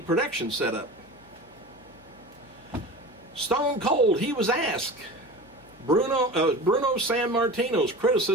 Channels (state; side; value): noise; left; hum, 29 dB below the sound